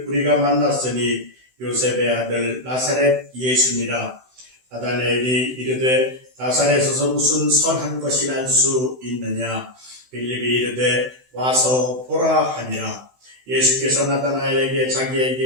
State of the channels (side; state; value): left; late; 16 ms